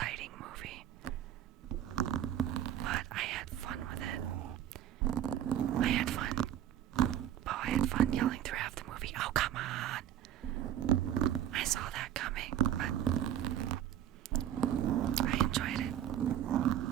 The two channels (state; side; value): quieter; left; 11.0 dB